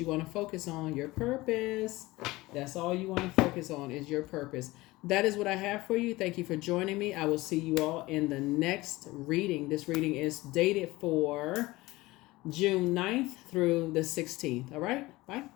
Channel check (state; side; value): quieter; right; 20.0 dB